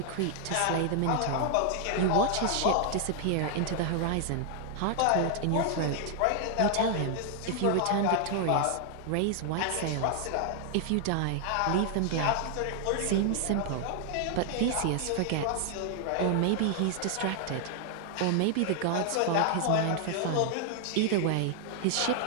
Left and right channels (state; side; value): different; both; correlation 0.00